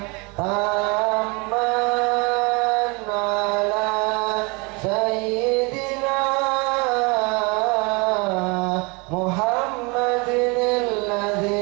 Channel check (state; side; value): quieter; left; 29.1 dB